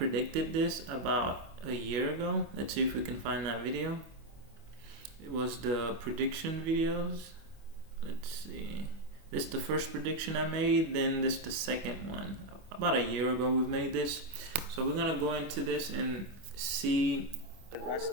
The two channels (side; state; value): left; late; 25 ms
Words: this about a year ago. Let's see if we can find that video. It was the prediction videos. Let's see. This is the first prediction I made, then this is the second one. About a year ago we've made this. So we're gonna go into this and see